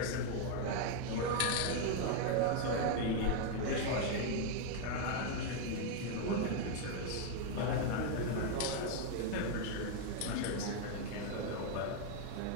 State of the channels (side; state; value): both; different; correlation 0.00